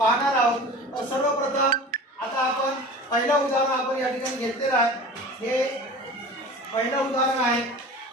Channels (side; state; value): both; normal; correlation 0.38